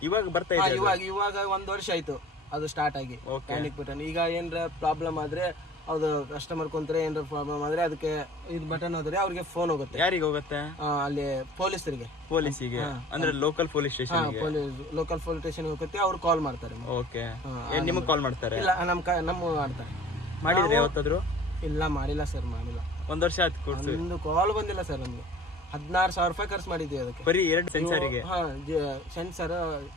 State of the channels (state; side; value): normal; both; correlation 0.46